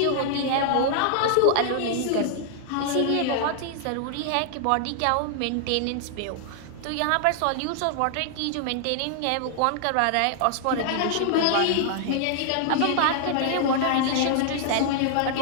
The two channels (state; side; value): different; both; correlation 0.00